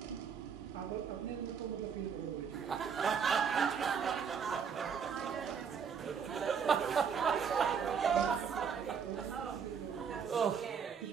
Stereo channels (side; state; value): left; quieter; 6.8 dB